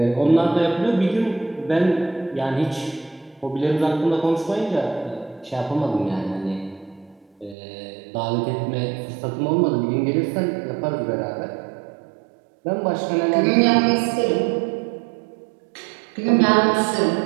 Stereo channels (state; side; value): drops out; left; at 7.6 s